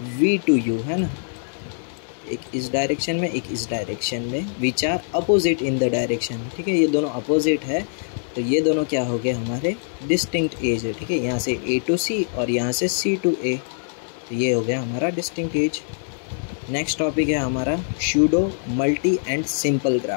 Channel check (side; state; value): right; silent; digital silence